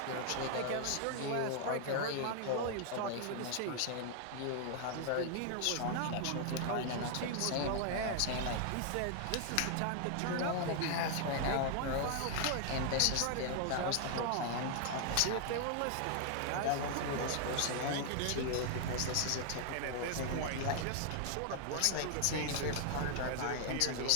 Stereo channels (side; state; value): both; different; correlation 0.00